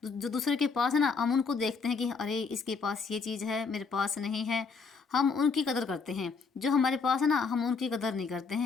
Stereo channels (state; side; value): quieter; right; 4.9 dB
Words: जो दूसरे के पास है ना, हम उनको देखते हैं कि अरे इसके पास ये चीज़ है, मेरे पास नहीं है। हम उनकी कदर करते हैं, जो हमारे पास है ना, हम उनकी कदर नहीं करते